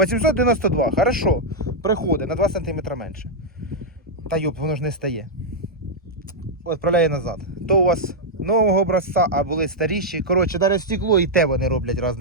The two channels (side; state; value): both; normal; correlation -0.05